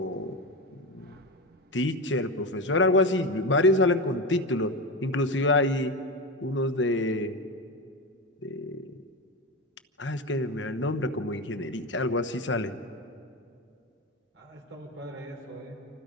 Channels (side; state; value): both; normal; correlation 0.20